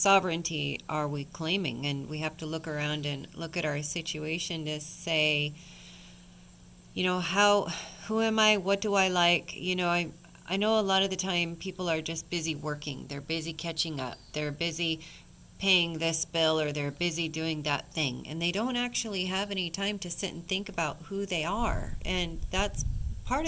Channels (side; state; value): both; identical; correlation 1.00